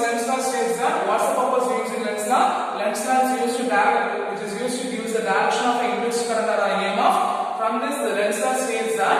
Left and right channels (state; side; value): identical; both; correlation 1.00